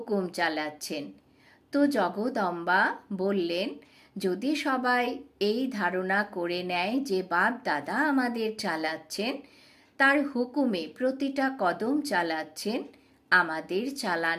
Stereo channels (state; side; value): identical; both; correlation 1.00